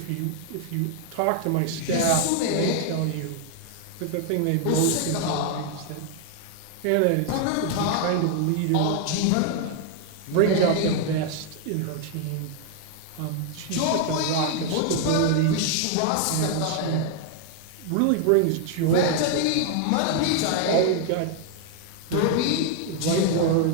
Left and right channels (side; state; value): both; different; correlation 0.00